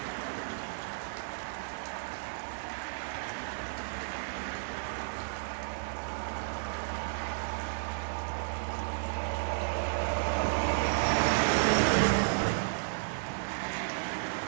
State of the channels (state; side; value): silent; left; digital silence